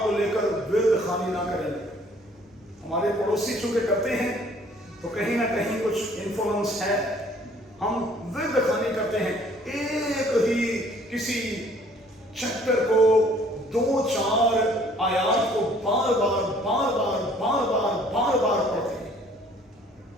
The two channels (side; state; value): both; normal; correlation 0.58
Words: को लेकर विर्द खानी ना करें। हमारे पड़ोसी चूंकि करते हैं तो कहीं ना कहीं कुछ इन्फ्लुएंस है, हम विर्द खानी करते हैं। एक ही किसी चैप्टर को 2-4 आयात को बार बार पढ़ते हैं।